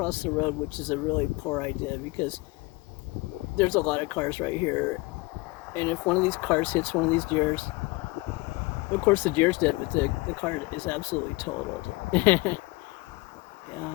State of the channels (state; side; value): quieter; right; 23.1 dB